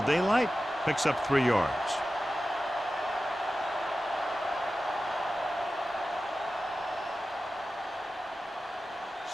daylight, picks up 3 yards.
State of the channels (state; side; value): normal; both; correlation 0.94